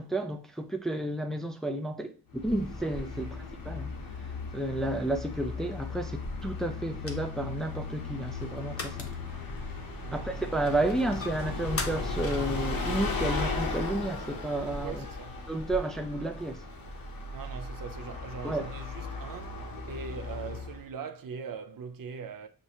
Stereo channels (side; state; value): both; normal; correlation 0.62